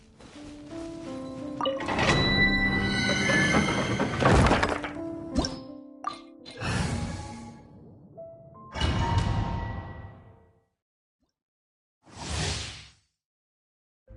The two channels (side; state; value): both; identical; correlation 1.00